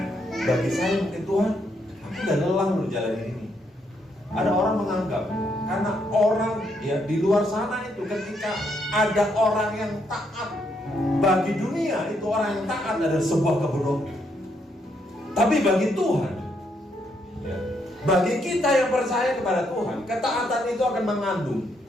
bagi saya mungkin Tuhan, aku udah lelah berjalan ini. Ada orang menganggap karena orang ya di luar sana itu ketika ada orang yang taat, bagi dunia itu orang yang taat adalah sebuah kebodohan. Tapi bagi Tuhan, ya, bagi kita yang percaya kepada Tuhan, ketaatan itu akan mengandung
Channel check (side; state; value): both; normal; correlation 0.75